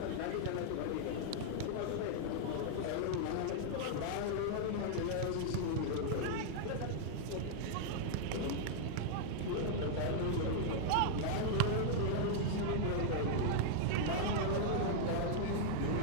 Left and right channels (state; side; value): different; both; correlation -0.01